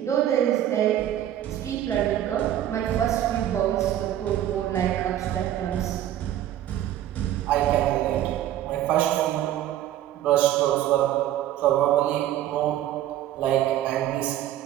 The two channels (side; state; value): left; quieter; 12.2 dB